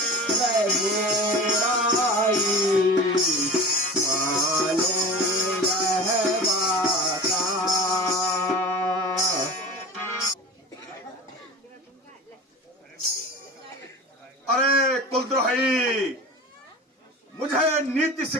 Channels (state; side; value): normal; both; correlation 0.34